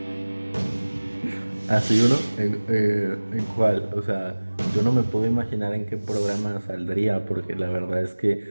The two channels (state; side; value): inverted; both; correlation -1.00